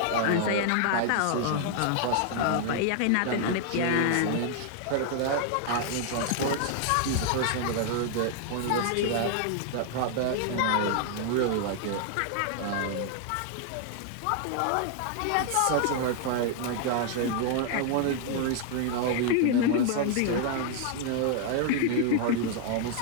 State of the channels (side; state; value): both; different; correlation 0.00